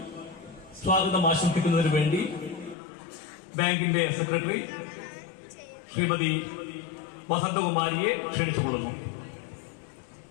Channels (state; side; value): drops out; right; at 2.8 s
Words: സ്വാഗതം ആശംസിക്കുന്നതിന് വേണ്ടി ബാങ്കിന്റെ സെക്രട്ടറി ശ്രീമതി വസന്തകുമാരിയെ ക്ഷണിച്ചുകൊള്ളുന്നു.